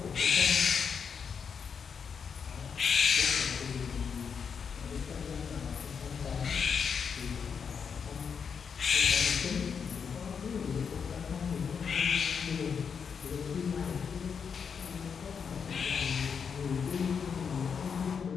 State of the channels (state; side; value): quieter; right; 6.5 dB